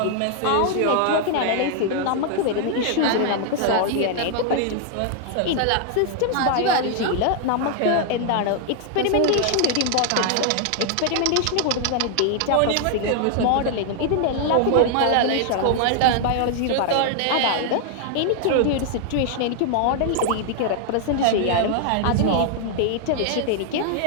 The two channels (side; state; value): both; different; correlation 0.00